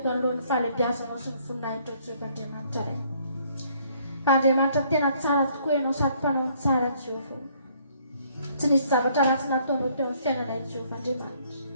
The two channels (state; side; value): inverted; both; correlation -0.64